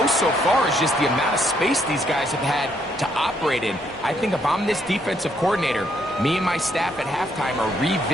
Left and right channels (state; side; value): normal; both; correlation 0.72